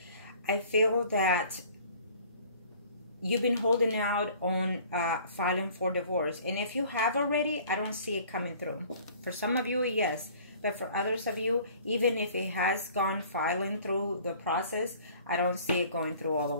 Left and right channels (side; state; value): both; inverted; correlation -0.51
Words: I feel that you've been holding out on filing for divorce. And if you have already, I don't see it coming through. For some of you, yes. But for others of you, even if it has gone filing through the process, I don't see it going through all the